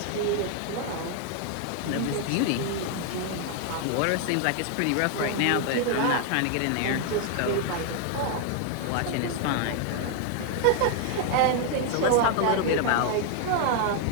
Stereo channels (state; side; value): different; both; correlation 0.00